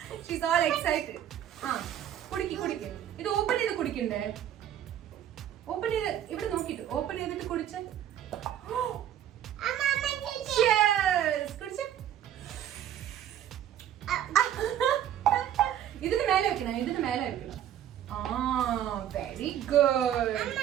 She's all excited. Kudiki. Idu open idu kudikinde. Open it. Even no kid. Open it. Kudiche. Cheers. Kudiche. Idu mele vekkina. Very good.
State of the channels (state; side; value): quieter; left; 10.7 dB